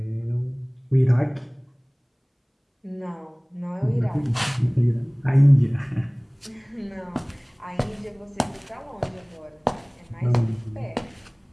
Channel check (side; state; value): both; identical; correlation 1.00